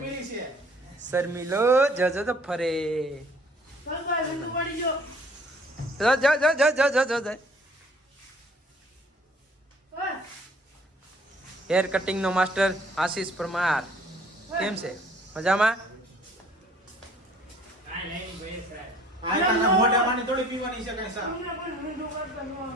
છે શર્મિલો જો જો તો ફરે જો જો જો જો જો જો જો જો હેર કટિંગ નો માસ્ટર આશીષ પરમાર કેમ છે મજામાં આ તાના મોઢા માની થોડી પીવાની છે કઈ સા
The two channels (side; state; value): both; normal; correlation 0.56